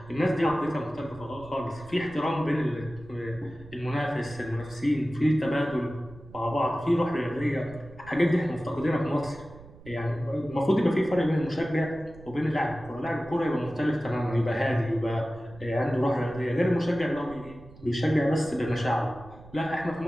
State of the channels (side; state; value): right; noise; rumble, 20 dB below the sound